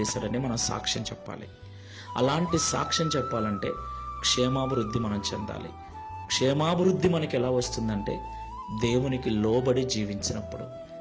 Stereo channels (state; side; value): identical; both; correlation 1.00